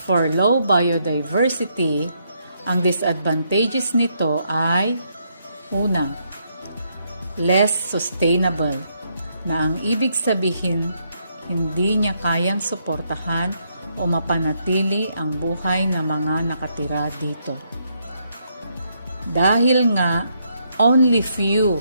low biodiversity, ang disadvantages nito ay una, less sustainable, na ang ibig sabihin hindi niya kayang suportahan o mapanatili ang buhay ng mga nakatira dito. Dahil nga, only few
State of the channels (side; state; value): both; inverted; correlation -0.76